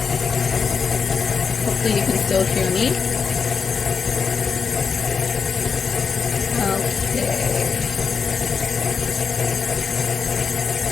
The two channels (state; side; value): quieter; right; 5.7 dB